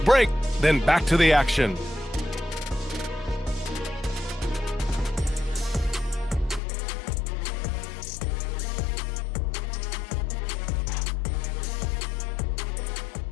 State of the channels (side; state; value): right; drops out; at 6.6 s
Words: break, then back to the action.